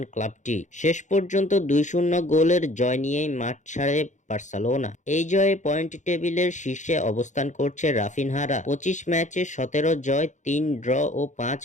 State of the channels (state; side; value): late; right; 0.35 ms